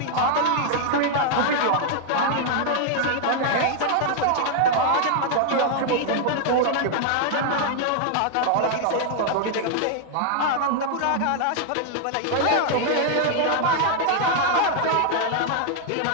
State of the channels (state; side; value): different; both; correlation 0.00